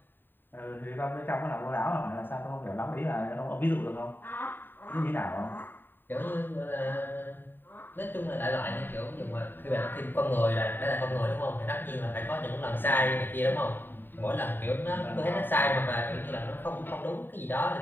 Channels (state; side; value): late; right; 0.094 ms